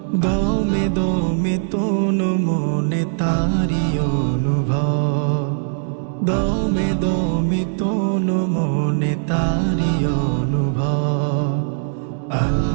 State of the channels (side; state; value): left; silent; digital silence